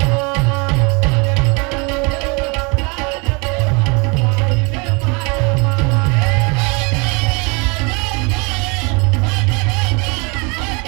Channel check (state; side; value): quieter; left; 30.6 dB